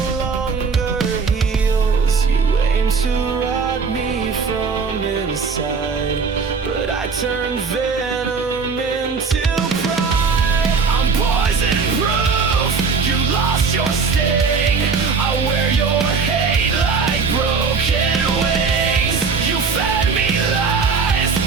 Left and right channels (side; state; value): left; quieter; 5.1 dB